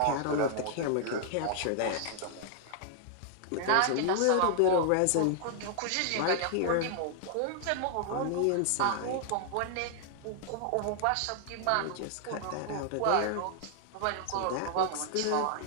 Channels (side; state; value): both; different; correlation -0.01